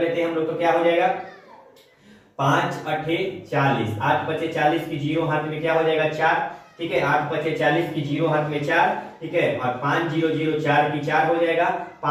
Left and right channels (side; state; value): both; identical; correlation 1.00